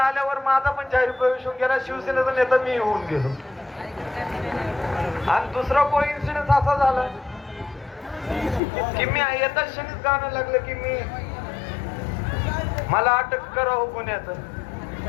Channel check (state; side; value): drops out; right; at 8.6 s